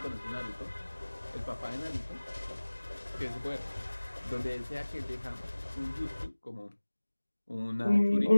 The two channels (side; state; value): both; inverted; correlation -1.00